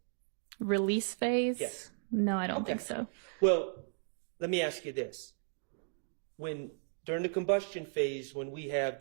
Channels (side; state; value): left; silent; digital silence